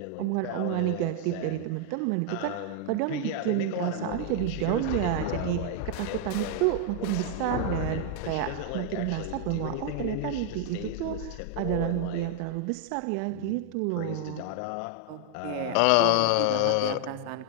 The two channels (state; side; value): different; both; correlation 0.00